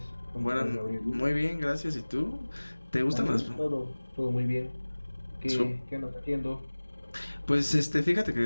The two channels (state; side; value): inverted; both; correlation -1.00